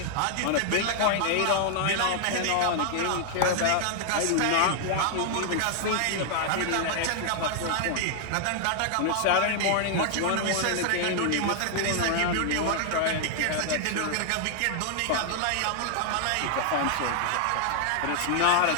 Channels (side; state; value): both; different; correlation 0.00